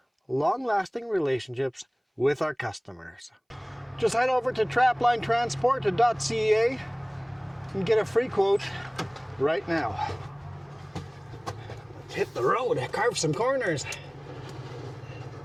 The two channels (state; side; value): identical; both; correlation 1.00